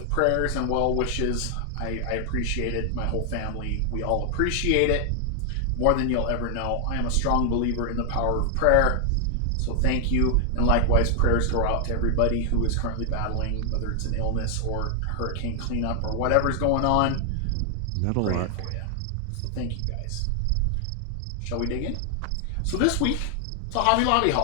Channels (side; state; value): both; different; correlation 0.00